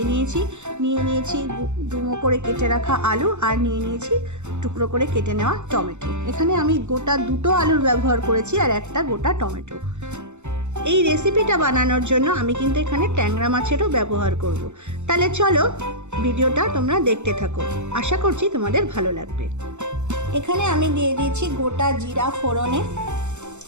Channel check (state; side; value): late; left; 0.83 ms